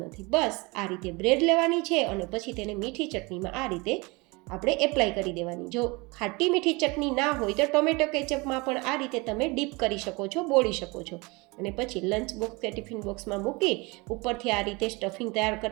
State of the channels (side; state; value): left; quieter; 26.0 dB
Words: બસ આ રીતે બ્રેડ લેવાની છે અને પછી તેને મીઠી ચટણીમાં આ રીતે આપણે એપ્લાય કરી દેવાની. જો ખાટી મીઠી ચટણી ના હોય તો ટોમેટો કેચઅપમાં પણ આ રીતે તમે ડીપ કરી શકો છો, બોળી શકો છો. અને પછી લંચ બોક્સ કે ટિફિન બોક્સમાં મૂકી ઉપરથી આ રીતે સ્ટફિંગ તૈયાર